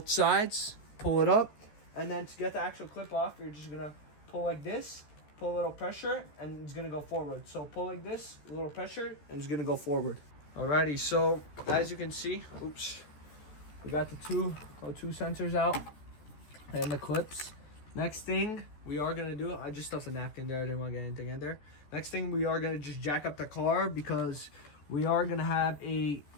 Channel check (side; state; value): right; late; 14 ms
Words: sides. Pull it up, and then to get the actual clip off, you're just gonna pull like this. Pull a little pressure, and it's gonna go forward. So pull like this, a little pressure, and it's gonna go forward. Alrighty, so as you can see, we got the two O2 sensors out and the clips. Next thing we are gonna do, I just stuffed a napkin there, I didn't want to get anything in there. Next thing, we are gonna just jack up the car because we are gonna have a